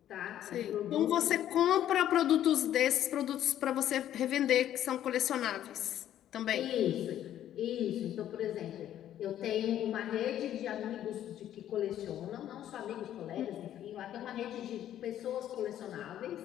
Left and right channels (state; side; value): quieter; right; 11.5 dB